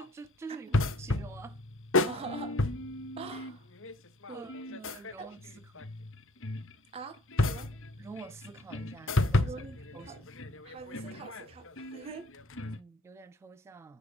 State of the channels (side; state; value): both; normal; correlation 0.56